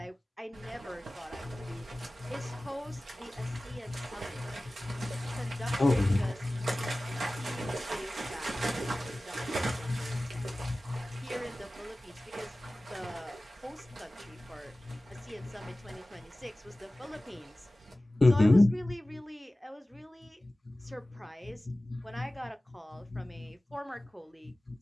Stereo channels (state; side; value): normal; both; correlation 0.97